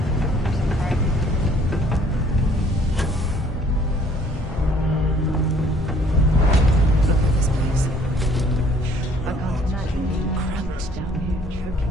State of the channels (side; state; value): both; normal; correlation 0.59